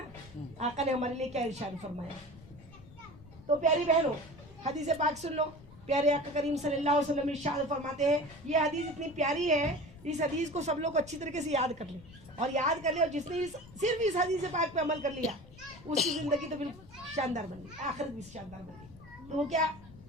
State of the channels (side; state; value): left; noise; rumble, 19 dB below the sound